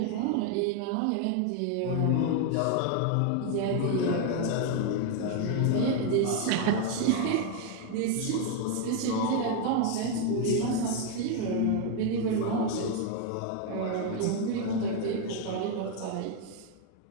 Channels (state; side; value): different; both; correlation 0.01